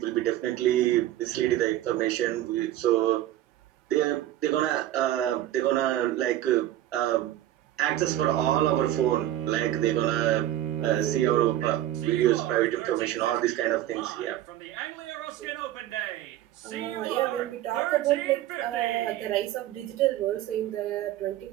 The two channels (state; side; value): quieter; left; 13.4 dB